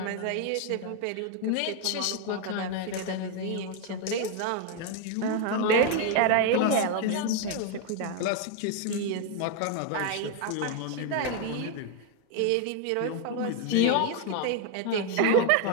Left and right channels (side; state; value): both; different; correlation 0.01